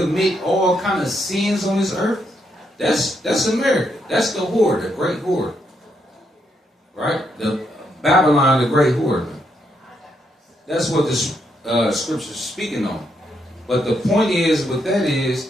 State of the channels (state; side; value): normal; both; correlation 0.77